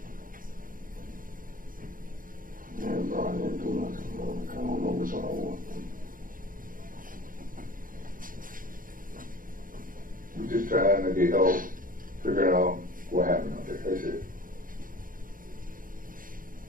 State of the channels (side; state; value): left; late; 0.40 ms